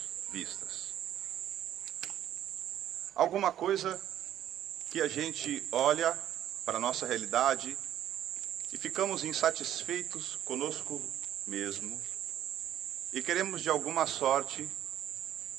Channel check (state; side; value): quieter; left; 11.4 dB